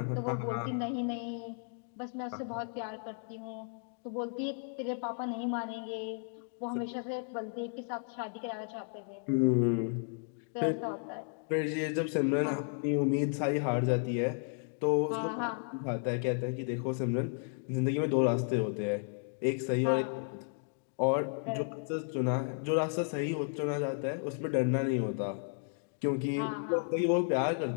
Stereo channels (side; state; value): right; silent; 55 dB below the other